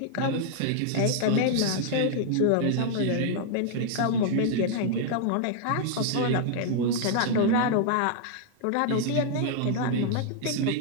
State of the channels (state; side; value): different; both; correlation -0.01